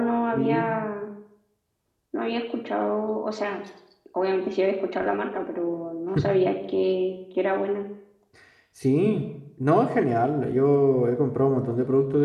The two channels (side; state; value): both; identical; correlation 1.00